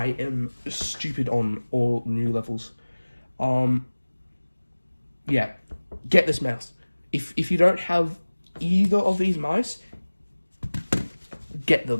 am stupid on all new levels. Yeah, get this mouse. If you don't have either of these mice, get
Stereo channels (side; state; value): both; inverted; correlation -1.00